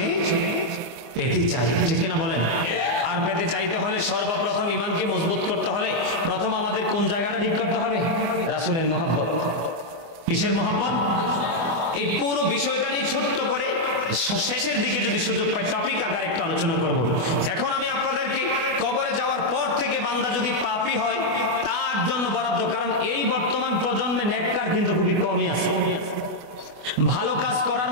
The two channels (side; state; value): left; late; 24 ms